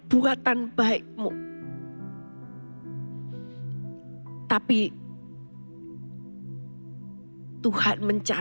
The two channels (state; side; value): inverted; both; correlation -1.00